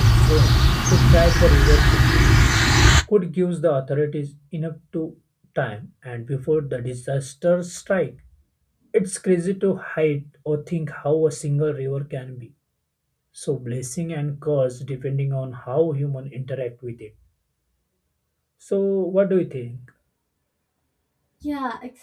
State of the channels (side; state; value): both; identical; correlation 1.00